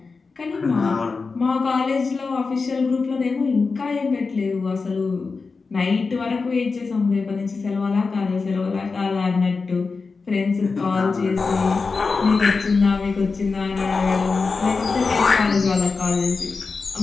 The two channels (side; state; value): right; quieter; 4.4 dB